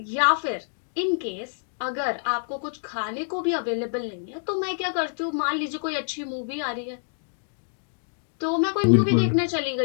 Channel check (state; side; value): silent; right; digital silence